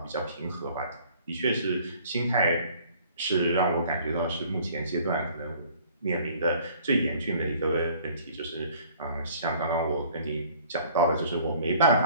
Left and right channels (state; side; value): inverted; both; correlation -0.54